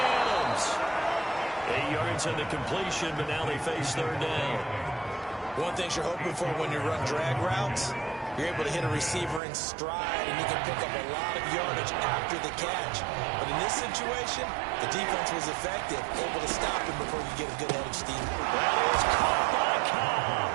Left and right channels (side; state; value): left; drops out; at 9.4 s